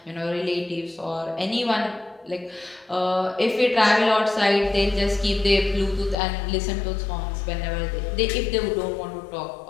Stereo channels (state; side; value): drops out; right; at 6.2 s